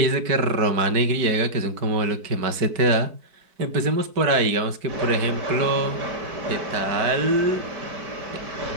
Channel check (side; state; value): left; late; 4.6 ms